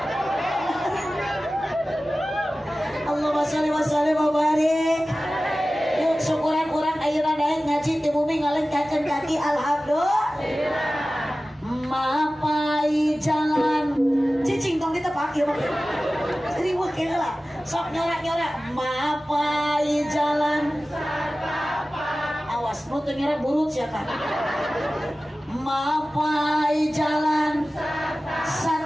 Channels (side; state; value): both; normal; correlation 0.96